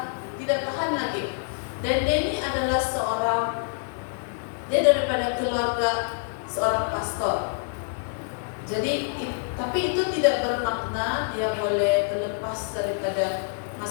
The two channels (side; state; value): right; silent; digital silence